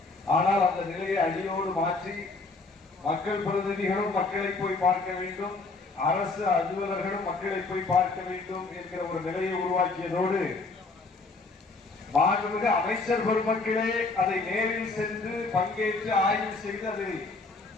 ஆனால் அந்த நிலையை அடியோடு மாற்றி மக்கள் பிரதிநிதிகளும் மக்களை போய் பார்க்க வேண்டும், அரசு அலுவலர்களும் மக்களை போய் பார்க்க வேண்டும் என்கிற ஒரு நிலையை உருவாக்கியதோடு மாண்புமிகு அமைச்சர் பெருமக்களே அதை நேரில் சென்று பங்கேற்று ஆய்வு செய்து அதை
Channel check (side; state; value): right; quieter; 3.7 dB